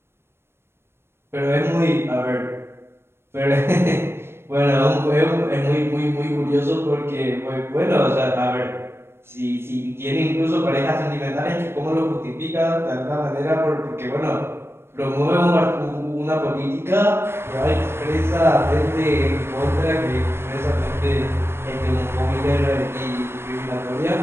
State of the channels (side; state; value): left; late; 0.12 ms